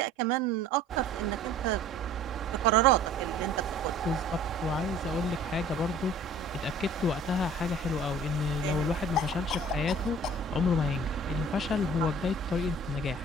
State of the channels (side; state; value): both; normal; correlation 0.49